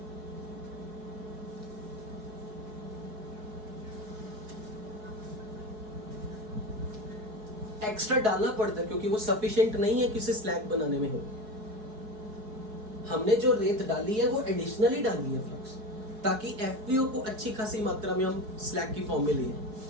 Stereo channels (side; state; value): left; late; 4.7 ms